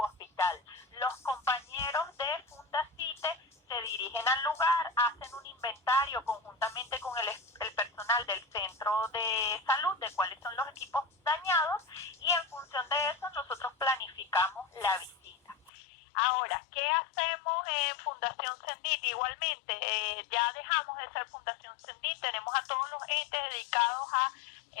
Los compañeros de Fundacite se dirigen al lugar, hacen un inventario conjuntamente con el personal del centro de salud de cuáles son los equipos dañados y en función de eso nosotros planificamos la visita. Ahora, ¿qué hacemos en Fundación CENDIT? Igualmente, ya dejamos de ser Fundación CENDIT, tenemos a todos los entes dedicados a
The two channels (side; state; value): right; drops out; at 15.7 s